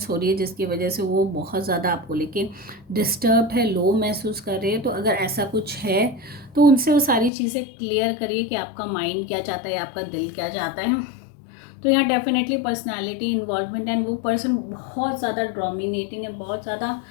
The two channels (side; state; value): right; drops out; at 7.3 s